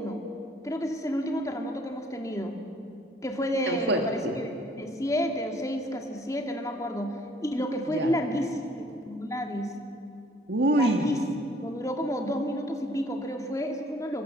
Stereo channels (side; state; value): both; normal; correlation 0.58